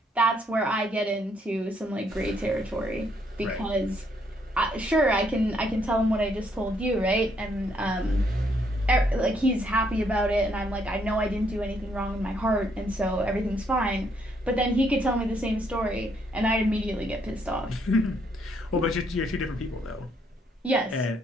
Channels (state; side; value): normal; both; correlation 0.71